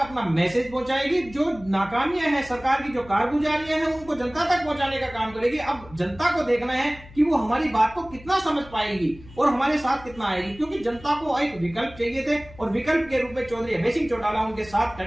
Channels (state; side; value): noise; left; hum, 20 dB below the sound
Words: मैसेज पहुंचाएगी। जो नाकामियां हैं, सरकार की जो कारगुजारियां हैं, उनको जनता तक पहुंचाने का काम करेगी। अब जनता को देखना है कि वो हमारी बात को कितना समझ पाएगी और हमारे साथ कितना आएगी, क्योंकि जनता को एक विकल्प चाहिए थे और विकल्प के रूप में चौधरी अभय सिंह चौटाला उनके साथ